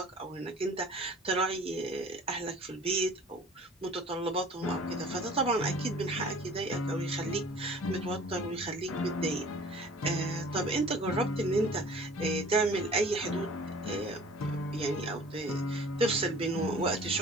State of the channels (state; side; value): normal; both; correlation 0.47